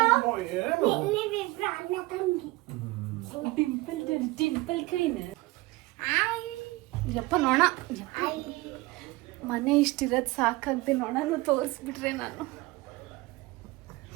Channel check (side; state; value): left; quieter; 21.3 dB